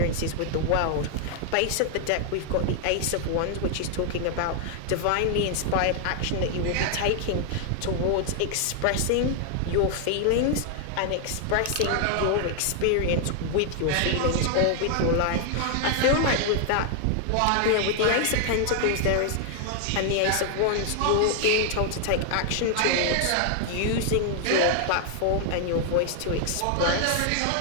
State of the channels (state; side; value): different; both; correlation 0.00